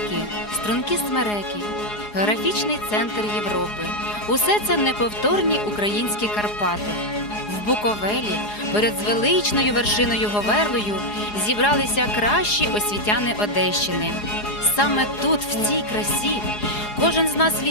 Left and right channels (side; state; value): right; late; 4.8 ms